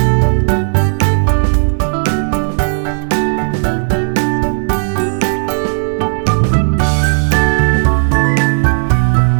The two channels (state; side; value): silent; left; digital silence